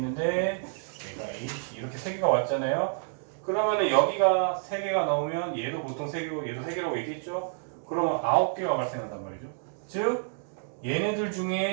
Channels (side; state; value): left; silent; digital silence